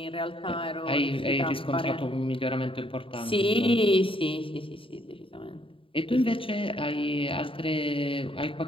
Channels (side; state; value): right; late; 0.26 ms